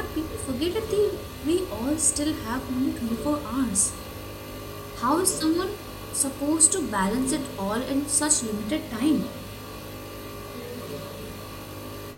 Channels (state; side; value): identical; both; correlation 1.00